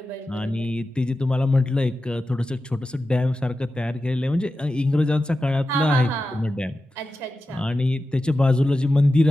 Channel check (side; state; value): both; normal; correlation 0.92